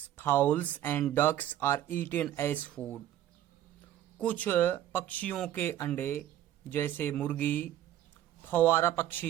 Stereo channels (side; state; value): left; quieter; 12.2 dB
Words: fowls and ducks are eaten as food. कुछ पक्षियों के अंडे जैसे मुर्गी, फव्वारा